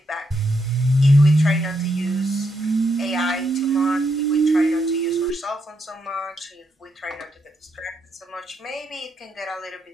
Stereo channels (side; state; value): both; normal; correlation 0.80